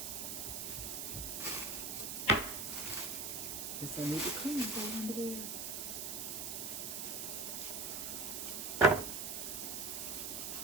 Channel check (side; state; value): right; noise; hiss, 3 dB below the sound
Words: Guess I need to clean that under there.